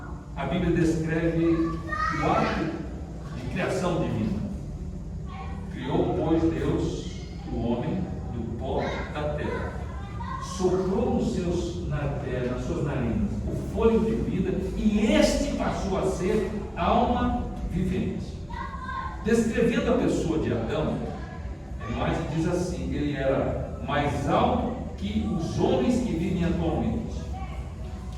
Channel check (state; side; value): identical; both; correlation 1.00